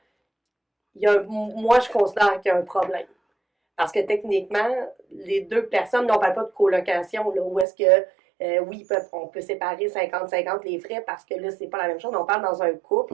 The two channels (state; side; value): drops out; left; at 7.7 s